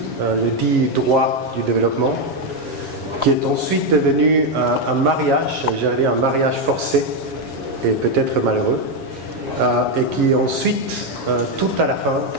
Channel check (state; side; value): late; left; 7.3 ms